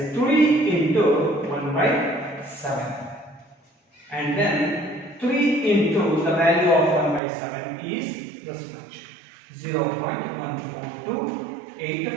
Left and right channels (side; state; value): left; drops out; at 7.2 s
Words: 3 into 1 by 7, and then 3 into the value of 1 by 7 is this much,